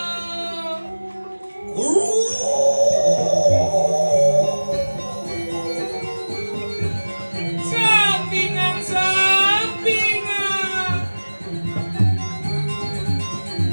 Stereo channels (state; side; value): inverted; both; correlation -1.00